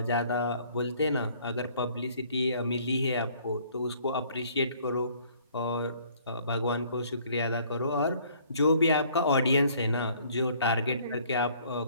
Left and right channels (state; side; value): inverted; both; correlation -0.59